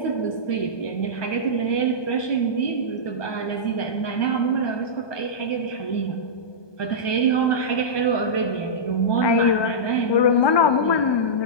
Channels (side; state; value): right; late; 1.2 ms